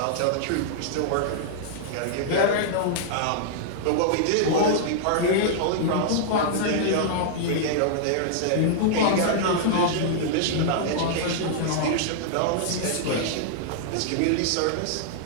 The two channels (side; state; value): both; different; correlation -0.01